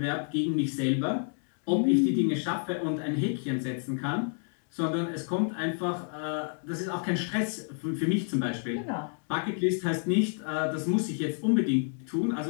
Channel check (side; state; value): right; silent; 58 dB below the other